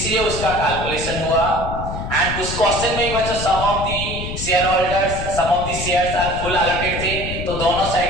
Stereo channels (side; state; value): left; noise; rumble, 6 dB below the sound